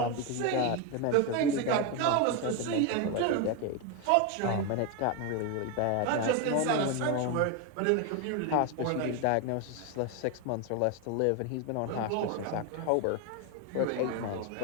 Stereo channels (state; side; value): different; both; correlation 0.02